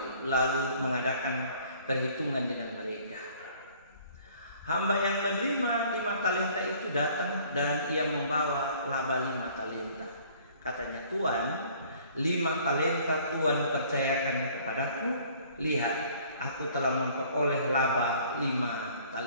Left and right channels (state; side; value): inverted; both; correlation -0.55